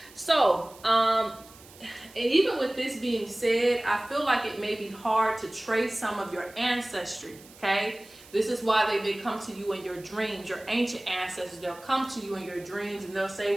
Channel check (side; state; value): right; noise; hiss, 22 dB below the sound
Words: So, and even with this being said, I feel like it may be hard to trace some of your ancestry, okay? This is why they may come to you in your dreams. Your ancient ancestors, they'll come to you in your dreams and they'll say,